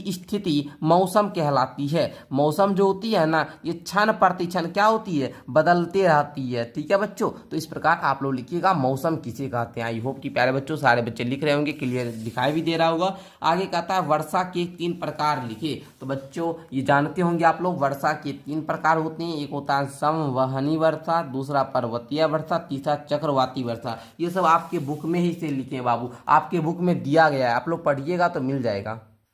स्थिति मौसम कहलाती है। मौसम जो होती है ना ये क्षण प्रतिक्षण क्या होती है, बदलते रहती है, ठीक है बच्चों। तो इस प्रकार आप लोग लिखिएगा मौसम किसे कहते हैं। आई होप कि प्यारे बच्चों सारे बच्चे लिख रहे होंगे, क्लियर दिखाई भी दे रहा होगा। आगे कहता है वर्षा के 3 प्रकार लिखे। तो बच्चों ये जानते होंगे आप लोग वर्षा के 3 प्रकार होते हैं। एक होता है संवहनी वर्षा, दूसरा पर्वतीय वर्षा, तीसरा चक्रवाती वर्षा। ये सब आपके बुक में ही से लिखे हैं बाबू, आपके बुक में दिया गया है, आप लोग पढ़िएगा तो मिल जाएगा।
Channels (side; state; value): both; identical; correlation 1.00